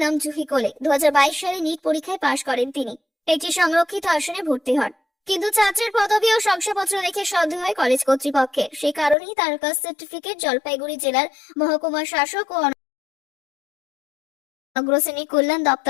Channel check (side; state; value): right; drops out; at 9.2 s